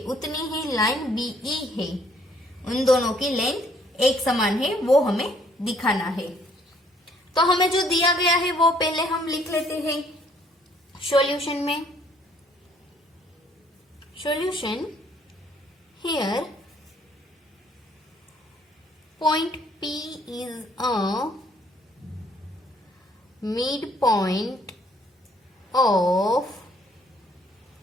उतनी ही लाइन बी ई है, उन दोनों की लेंथ एक समान है, वो हमें दिखाना है। तो हमें जो दिया गया है वो पहले हम लिख लेते हैं सॉल्यूशन में। Solution here point P is a midpoint of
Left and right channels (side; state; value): both; normal; correlation 0.64